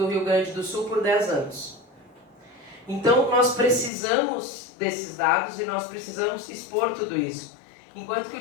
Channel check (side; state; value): right; drops out; at 3.9 s